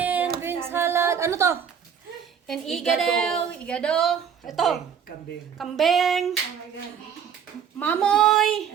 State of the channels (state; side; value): quieter; left; 7.8 dB